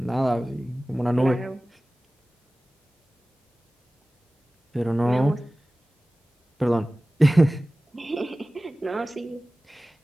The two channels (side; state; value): both; normal; correlation 0.97